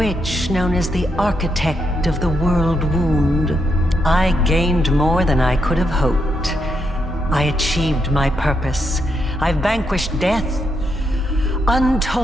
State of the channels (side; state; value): both; normal; correlation 0.80